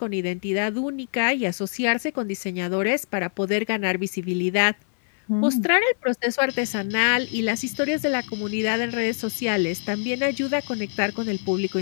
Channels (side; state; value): right; silent; 62 dB below the other